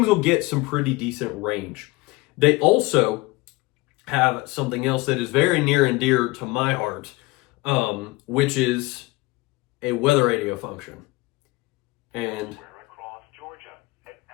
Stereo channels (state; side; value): quieter; right; 22.0 dB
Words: will get some pretty decent range. They also have something else that is very near and dear to my heart, which is a weather radio function. And